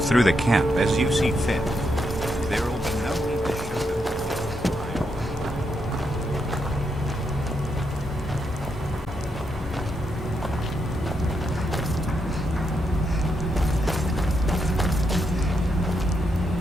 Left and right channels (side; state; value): both; normal; correlation 0.81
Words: the camp as you see fit. There will be no need to show them.